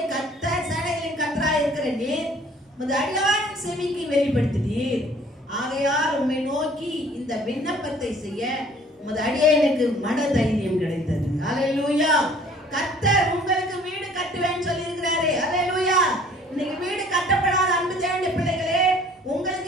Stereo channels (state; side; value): normal; both; correlation 0.54